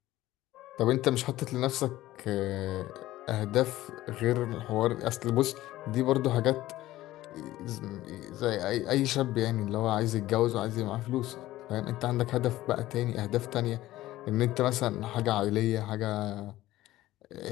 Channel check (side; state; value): right; quieter; 15.8 dB